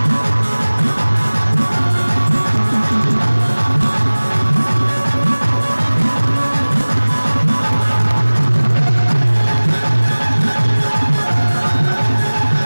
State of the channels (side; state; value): both; inverted; correlation -1.00